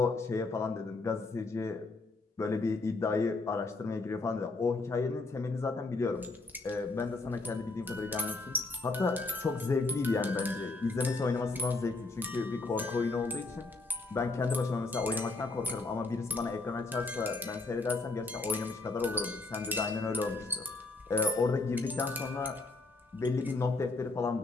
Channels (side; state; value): right; quieter; 3.4 dB